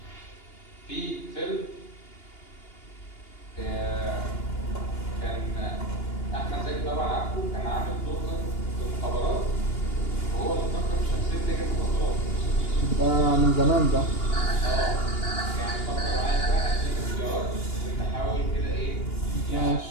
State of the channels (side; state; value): right; late; 2.8 ms